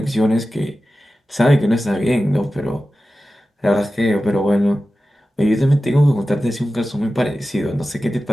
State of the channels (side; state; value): both; normal; correlation 0.94